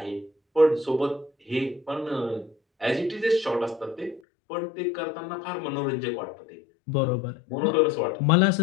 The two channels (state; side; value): drops out; right; at 4.2 s